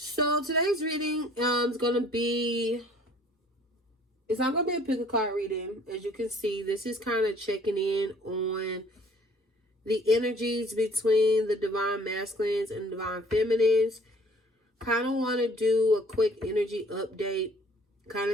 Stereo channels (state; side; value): normal; both; correlation 0.55